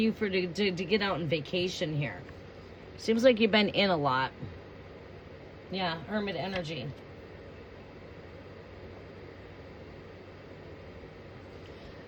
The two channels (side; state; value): both; identical; correlation 1.00